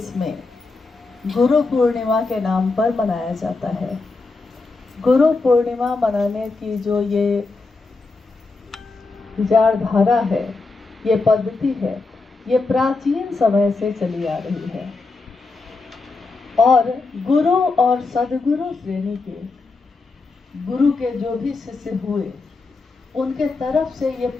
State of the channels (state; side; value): quieter; right; 3.8 dB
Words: में गुरु पूर्णिमा के नाम पर मनाया जाता है। गुरु पूर्णिमा मनाने की जो ये विचारधारा है, ये पद्धति है, ये प्राचीन समय से चली आ रही है और गुरु और सदगुरु श्रेणी के गुरु के जो भी शिष्य हुए उनके तरफ से ये